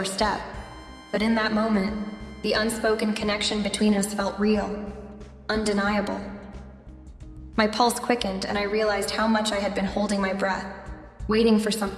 but in that moment, the unspoken connection between us felt real, undeniable. My pulse quickened, and I realized how much I had been holding my breath, waiting for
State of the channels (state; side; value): identical; both; correlation 1.00